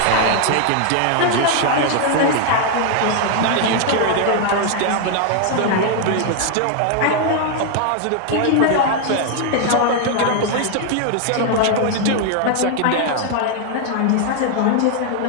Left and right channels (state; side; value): different; both; correlation 0.00